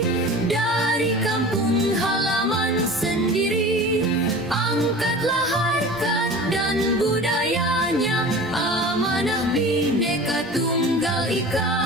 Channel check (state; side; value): normal; both; correlation 0.37